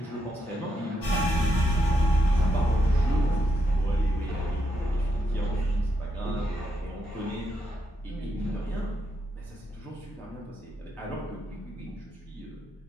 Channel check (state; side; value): normal; both; correlation 0.80